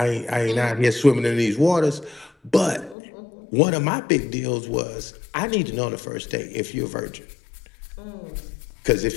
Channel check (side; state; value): right; drops out; at 3.0 s